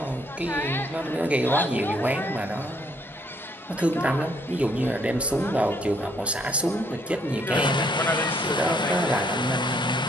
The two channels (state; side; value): normal; both; correlation 0.68